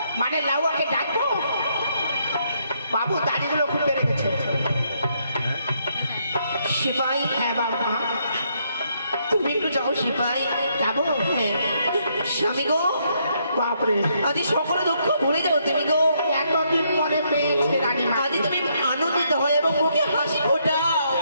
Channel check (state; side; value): inverted; both; correlation -0.74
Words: মানে লাউকে ডাকবো? বাবু দাড়িগুলো খুলে রেখেছে। সিপাই, হ্যাঁ বাবা তুমি একটু যাও। সিপাই যাবো? হ্যাঁ। স্বামী গো, বাপরে আজ সকলে দুঃখ ভুলে যাও তুমি গো। এতদিন পরে পেয়েছে রানীমা, আজ তুমি আনন্দিত হয় এবং মুখে হাসি ফোটাও।